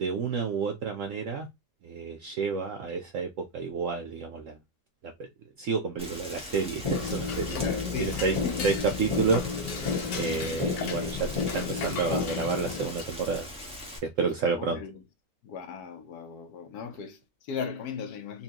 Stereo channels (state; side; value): normal; both; correlation -0.01